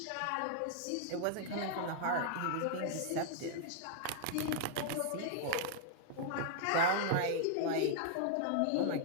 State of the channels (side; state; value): both; different; correlation -0.01